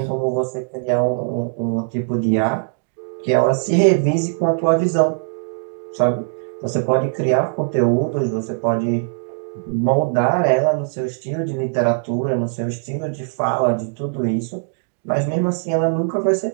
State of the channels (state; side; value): silent; left; digital silence